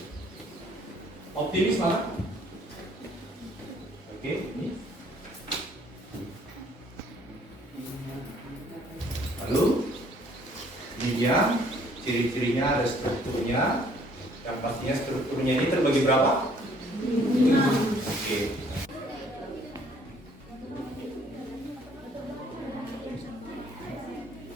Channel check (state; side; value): normal; both; correlation 0.61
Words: Optimis mana? Oke, ini. Lalu ini dia ciri-cirinya, ada strukturnya. Yang pastinya strukturnya ini terbagi berapa? 5. Oke.